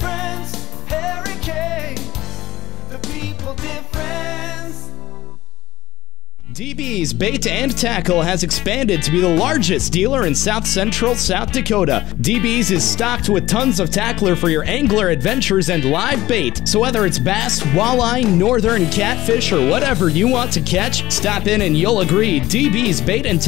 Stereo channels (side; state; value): right; quieter; 16.5 dB